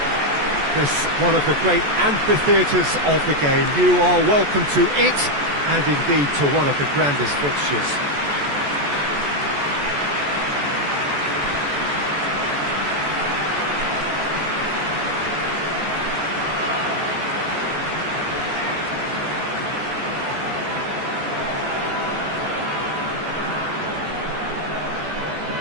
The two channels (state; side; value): late; left; 14 ms